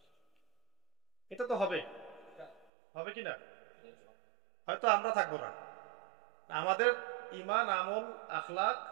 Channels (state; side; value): drops out; left; at 2.7 s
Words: এটা তো হবে, হবে কি না? হয়তো আমরা থাকবো না, আমাদের ইমান, আমল, আখলাক,